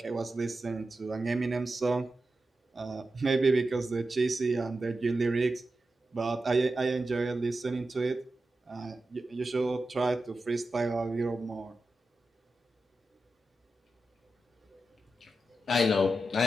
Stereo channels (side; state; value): both; normal; correlation 0.91